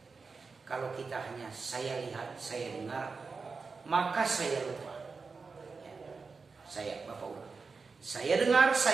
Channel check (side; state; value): left; quieter; 4.6 dB